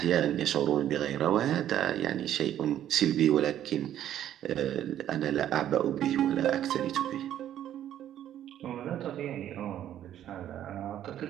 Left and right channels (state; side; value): quieter; left; 11.3 dB